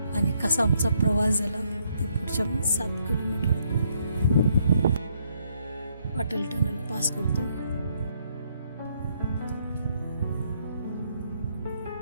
आणि कसा आमचा प्रवास झाला ते पुढच्या 7 किलोमीटर अटल टनल पास करतो.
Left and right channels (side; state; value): both; inverted; correlation -0.72